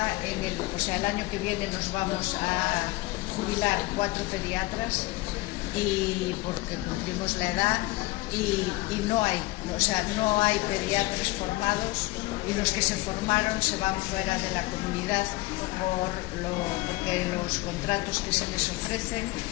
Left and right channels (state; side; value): quieter; right; 20.3 dB